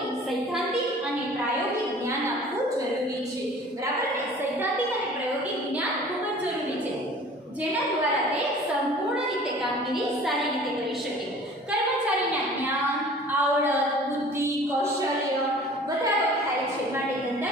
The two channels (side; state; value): both; normal; correlation 0.46